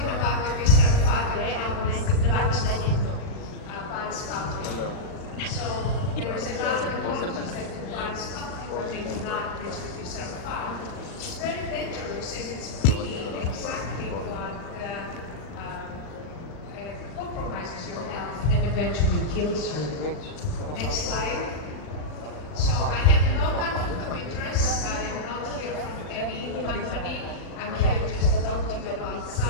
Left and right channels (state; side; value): late; right; 39 ms